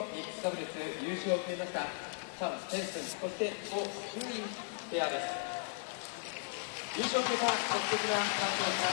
ックスダブルス優勝を決めましたチャン・ペンスン、そしてゴ・ユインペアです。優勝を決めた素敵な感動をま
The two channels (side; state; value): right; silent; 53 dB below the other